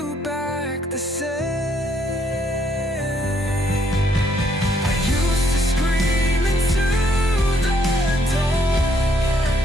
back the same.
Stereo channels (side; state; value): both; normal; correlation 0.70